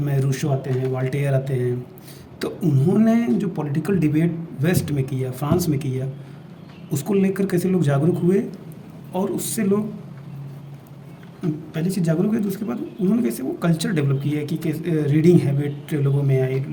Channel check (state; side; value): identical; both; correlation 1.00